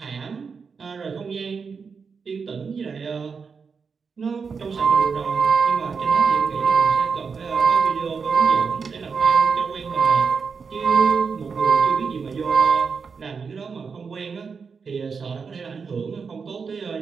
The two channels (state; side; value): quieter; left; 5.5 dB